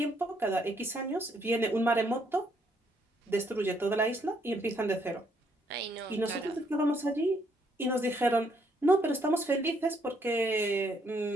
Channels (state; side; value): normal; both; correlation 0.71